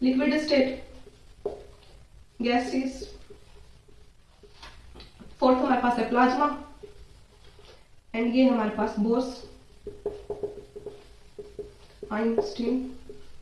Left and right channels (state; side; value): identical; both; correlation 1.00